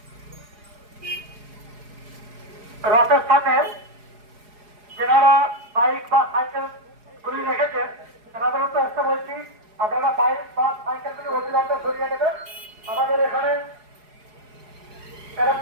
রথের সামনে যারা বাইক বা সাইকেল গুলি রেখেছেন তাদের উদ্দেশ্যে বলছি আপনারা বাইক বা সাইকেল গুলি অবিলম্বে সরিয়ে নেবেন। আমাদের এখানে এরা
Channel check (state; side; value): late; left; 4.8 ms